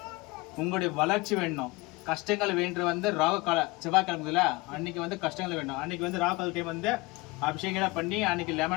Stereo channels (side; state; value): right; quieter; 23.4 dB